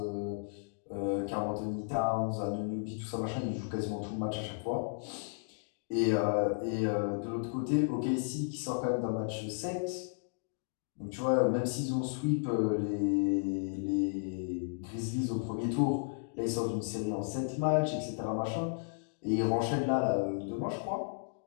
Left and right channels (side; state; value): right; silent; digital silence